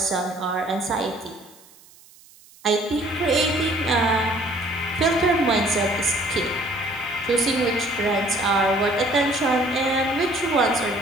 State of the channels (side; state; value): right; noise; hiss, 25 dB below the sound